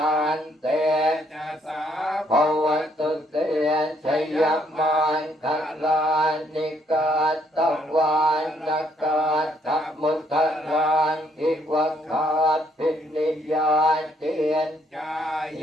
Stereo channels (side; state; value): both; normal; correlation 0.69